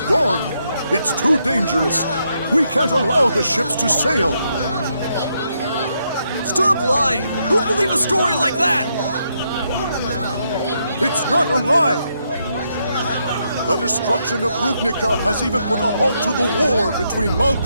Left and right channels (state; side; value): inverted; both; correlation -0.78